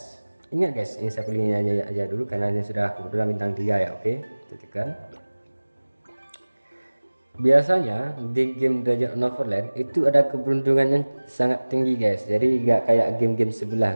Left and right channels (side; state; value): both; inverted; correlation -1.00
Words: ini saya pilihnya aja dulu karena ini sudah kebetulan bintang 3 ya. Oke, tekan. Biasanya di game Dragon Neverland itu ada keberuntungan yang sangat tinggi guys. Jadi nggak kayak game-game